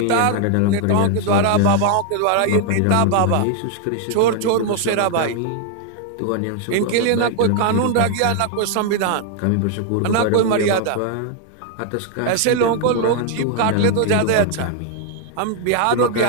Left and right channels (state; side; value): different; both; correlation 0.00